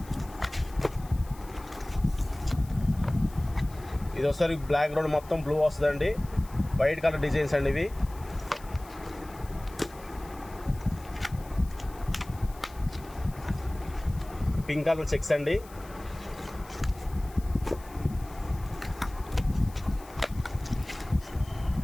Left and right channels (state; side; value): noise; left; hiss, 22 dB below the sound